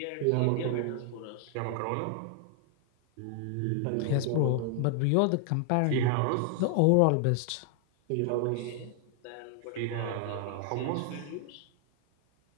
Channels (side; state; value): both; different; correlation 0.00